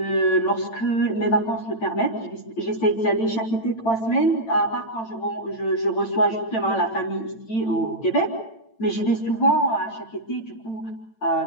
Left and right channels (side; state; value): right; late; 8.9 ms